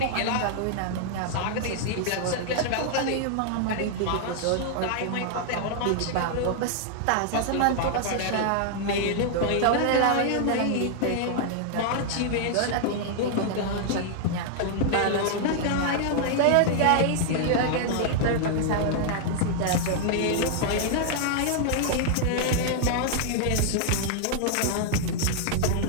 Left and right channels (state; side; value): different; both; correlation -0.01